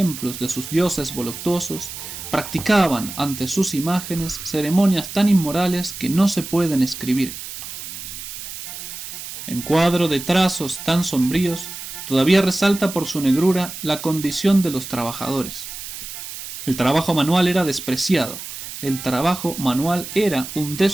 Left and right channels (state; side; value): noise; right; hiss, 10 dB below the sound